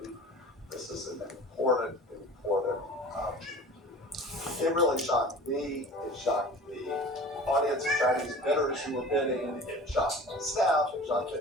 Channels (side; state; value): both; normal; correlation 0.40